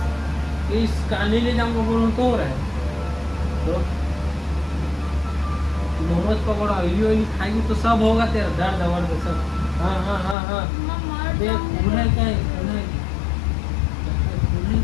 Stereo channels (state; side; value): drops out; right; at 10.4 s